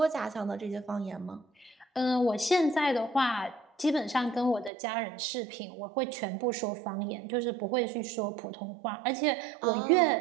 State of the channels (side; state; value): left; drops out; at 4.7 s